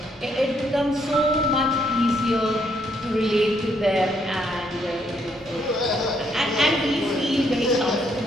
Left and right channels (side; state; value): both; normal; correlation 0.72